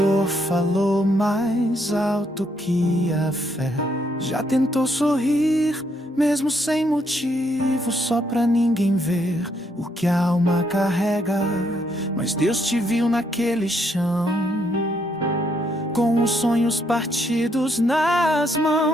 falou mais alto que a fé? Já tentou sorrir mesmo sem motivo, só pra ninguém ver o que a alma carrega? Mas Deus te viu naquele chão, com os sonhos partidos nas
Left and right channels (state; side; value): normal; both; correlation 0.74